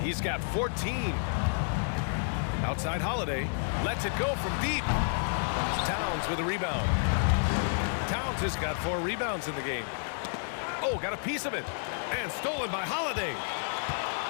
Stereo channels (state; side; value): silent; right; digital silence